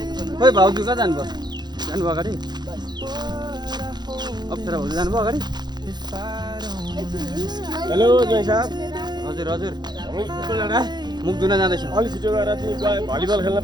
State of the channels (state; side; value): late; left; 0.21 ms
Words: खोइ भाउजू कहाँ जानुभयो जानुभयो अगाडि अप्सरा भाउजू जानुभयो अगाडि हेलो जय साहब हजुर हजुर पिपलडाँडा मुख धुन जाँदैछौँ अलि छिटो गएर तिमी भलिबल खेल्न